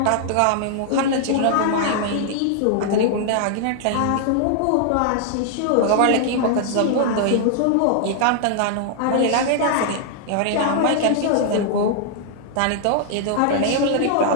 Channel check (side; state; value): both; different; correlation 0.00